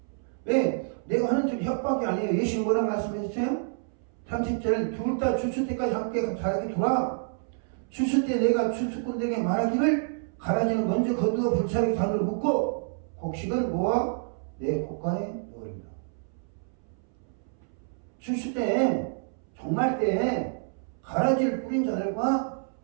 왜? 내가 하는 줄 협박이 아니에요. 예수님 뭐라고 말씀했어요? 30절 둘 다 추수 때까지 함께 자라게 두라. 추수 때 내가 추수꾼들에게 말하기를 가라지는 먼저 거두어 불사르게 단으로 묶고 곡식은 모아 내 곡간에 넣으리라. 추수 때 종말 때 가라지를 뿌린 자들과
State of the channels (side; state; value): left; silent; 59 dB below the other